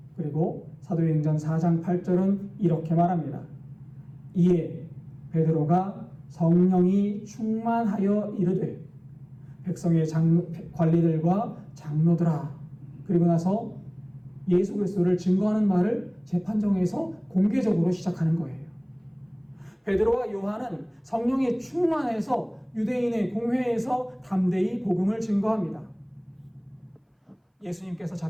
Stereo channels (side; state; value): both; identical; correlation 1.00